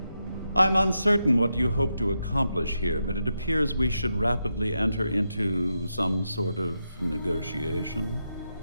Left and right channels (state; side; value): inverted; both; correlation -0.86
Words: I'm uncertain what you hope to accomplish here, but it appears we should rapidly enter into some sort of negotiation.